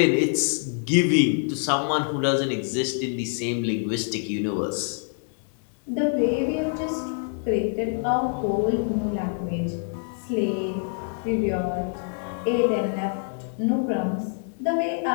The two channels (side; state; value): right; silent; 58 dB below the other